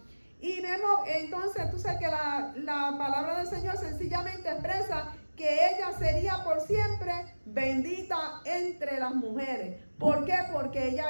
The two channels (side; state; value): both; inverted; correlation -1.00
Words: Y vemos entonces, tú sabes que la palabra del Señor sencillamente expresa que ella sería por siempre bendita entre las mujeres. ¿Por qué? Porque